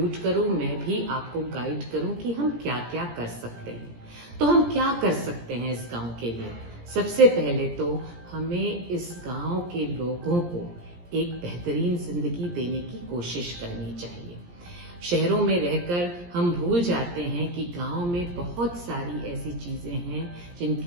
करूँ, मैं भी आपको गाइड करूँ कि हम क्या क्या कर सकते हैं। तो हम क्या कर सकते हैं इस गांव के लिए? सबसे पहले तो हमें इस गांव के लोगों को एक बेहतरीन जिंदगी देने की कोशिश करनी चाहिए। शहरों में रहकर हम भूल जाते हैं कि गांव में बहुत सारी ऐसी चीजें हैं,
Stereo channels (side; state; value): left; late; 17 ms